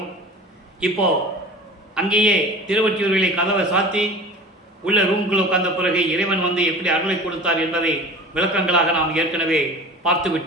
இப்போ அங்கேயே திருவொற்றியூரிலே கதவை சாத்தி உள்ள ரூம்குள் உட்கார்ந்த பிறகு இறைவன் வந்து எப்படி அருளை கொடுத்தார் என்பதை விளக்கங்களாக நாம் ஏற்கனவே பார்த்து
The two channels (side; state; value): both; normal; correlation 0.38